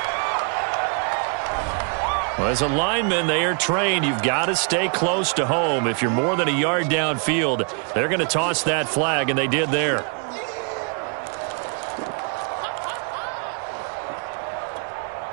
Well, as a lineman, they are trained. You've got to stay close to home. If you're more than a yard downfield, they're going to toss that flag, and they did there.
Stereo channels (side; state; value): left; quieter; 39.9 dB